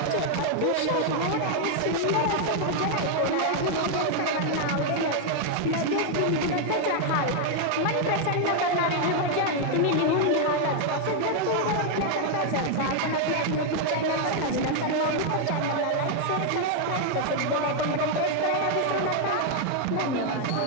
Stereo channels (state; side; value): different; both; correlation 0.00